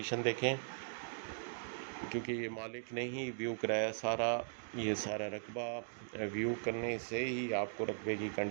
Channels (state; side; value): silent; left; digital silence